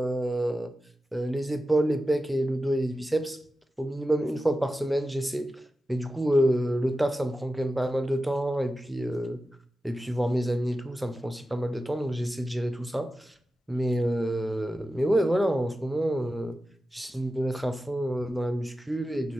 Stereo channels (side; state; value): both; normal; correlation 0.93